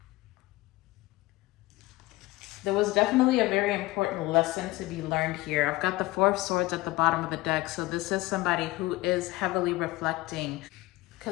there was definitely a very important lesson to be learned here. I've got the Four of Swords at the bottom of the deck. So this is somebody who is heavily reflecting,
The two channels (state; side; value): quieter; right; 19.3 dB